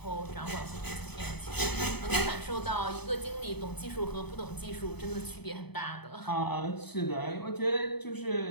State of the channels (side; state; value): right; late; 0.98 ms